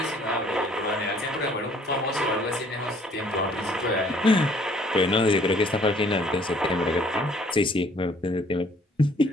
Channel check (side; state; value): both; normal; correlation 0.59